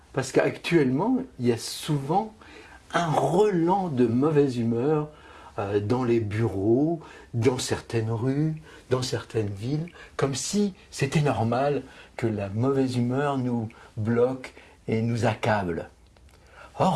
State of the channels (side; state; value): both; identical; correlation 1.00